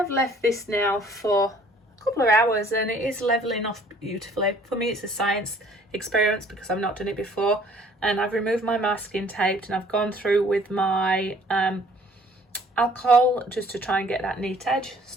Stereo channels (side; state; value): both; normal; correlation 0.57